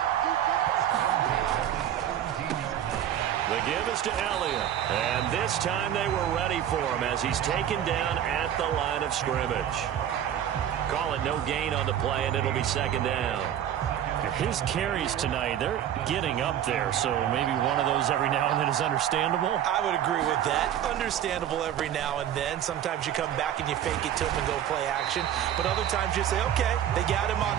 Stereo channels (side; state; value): left; quieter; 10.5 dB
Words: The give is to Elliott. And this time they were ready for him as he's taken down at the line of scrimmage. Call it no gain on the play, and it'll be 2nd down. His carries tonight, they're getting up there, so maybe one of those every now and then is understandable. I would agree with that. Understandable every now and then. Sometimes you come back and you fake it to him and go play action. But other times you say, okay, they got him